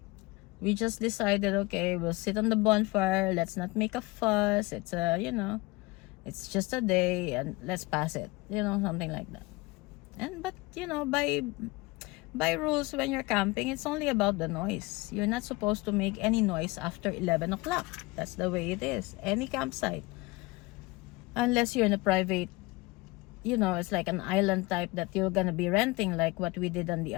we just decided, okay, we'll sit on the bonfire, let's not make a fuss, it's you know, it's just a day, and let's pass it, you know, something like that. But you know, by rules, when you're camping, it's only about the noise. You're not supposed to make any noise after 11 o'clock. That's the way it is, any campsite, unless you're in a private, you know, it's like an island type that you're gonna be renting, like what we did on the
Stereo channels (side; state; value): right; quieter; 23.0 dB